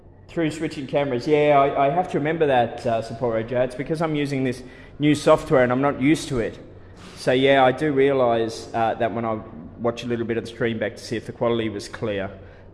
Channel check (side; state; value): both; identical; correlation 1.00